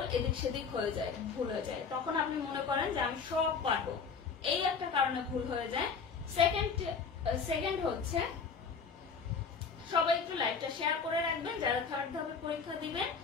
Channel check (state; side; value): quieter; right; 5.5 dB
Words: এদিক সেদিক হয়ে যায়, ভুল হয়ে যায়, তখন আপনি মনে করেন যে আমি সব পারবো। এই একটা কারণে ভুল হয়ে যায়। সেকেন্ড হচ্ছে সবাই একটু লাইভটা শেয়ার করে রাখবেন যারা থার্ড ধাপে পরীক্ষা দিবেন,